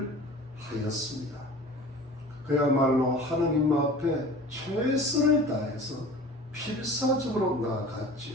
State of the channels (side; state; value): both; normal; correlation 0.41